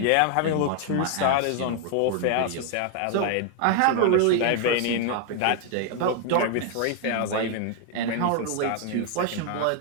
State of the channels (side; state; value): both; different; correlation 0.00